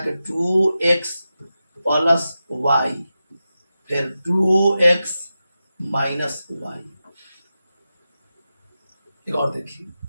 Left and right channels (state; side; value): inverted; both; correlation -0.92